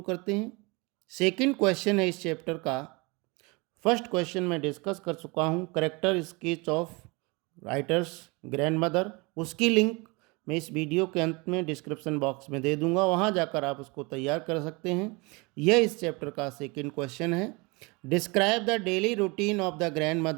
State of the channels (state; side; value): quieter; left; 27.2 dB